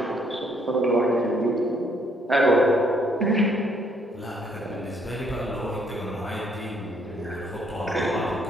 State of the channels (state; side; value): normal; both; correlation 0.68